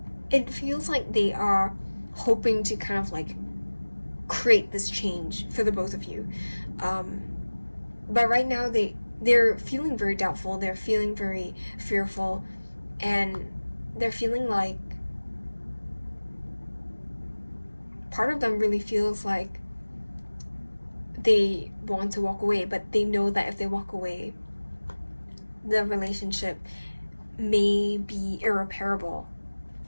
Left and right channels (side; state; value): both; inverted; correlation -1.00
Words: it feels like they are hoping to kind of like create this change for the both of you, but right now they're feeling very doubtful, they're feeling very fearful, and they're feeling like part of them really feels like they want to walk away, but they know that if they walk away, the relationship may be irreparable